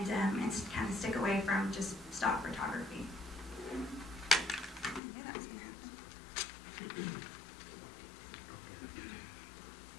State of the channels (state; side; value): drops out; right; at 5.0 s